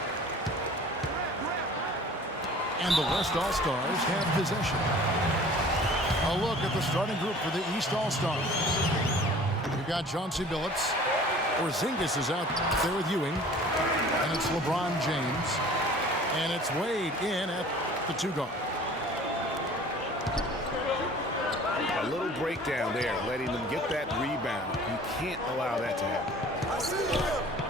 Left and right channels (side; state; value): both; normal; correlation 0.47